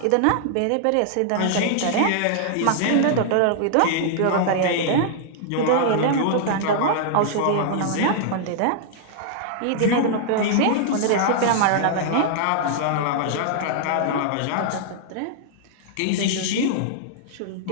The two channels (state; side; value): different; both; correlation -0.01